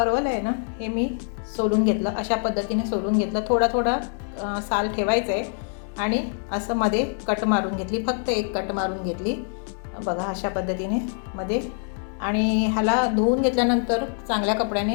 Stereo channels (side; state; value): right; silent; 61 dB below the other